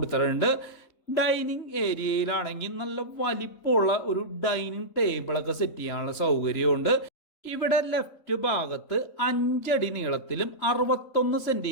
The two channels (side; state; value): right; late; 3.0 ms